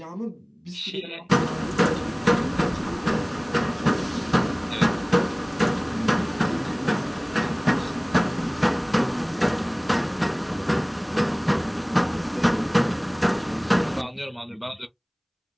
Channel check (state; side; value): identical; both; correlation 1.00